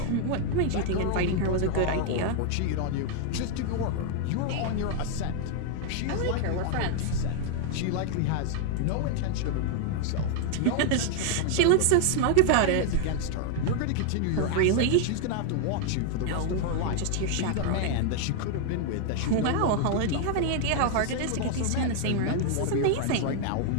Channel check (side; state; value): both; different; correlation 0.00